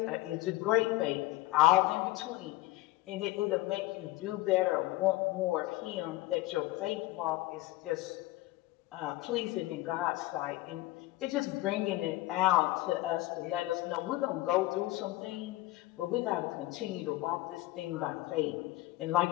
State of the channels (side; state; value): right; quieter; 18.0 dB